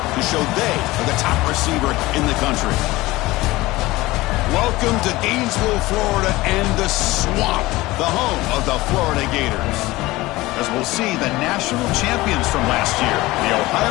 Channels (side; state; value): right; quieter; 19.4 dB